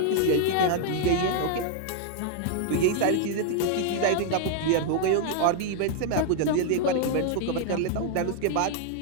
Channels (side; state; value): both; different; correlation 0.00